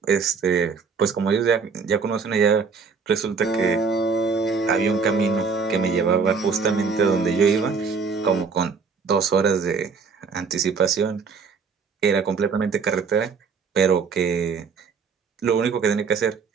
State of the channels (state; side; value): quieter; left; 5.3 dB